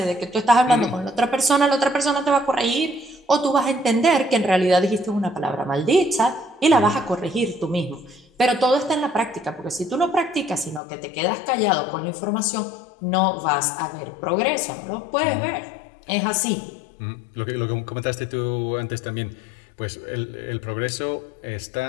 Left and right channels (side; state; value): right; drops out; at 10.8 s